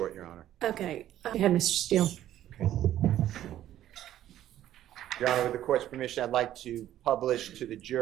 Your Honor. Okay, go ahead, Mr. Steele. Okay. Your Honor, with the court's permission, I'd like to publish to the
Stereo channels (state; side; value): quieter; left; 12.4 dB